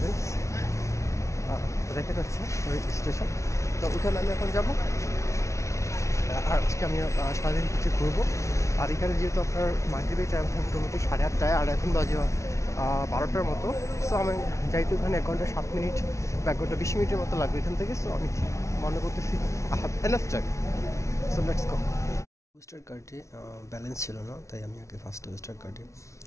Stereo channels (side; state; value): right; late; 0.14 ms